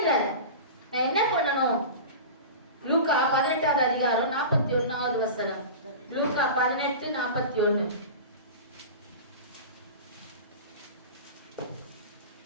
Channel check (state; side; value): inverted; both; correlation -0.31